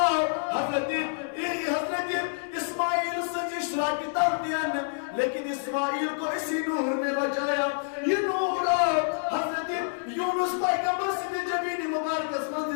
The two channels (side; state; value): right; silent; digital silence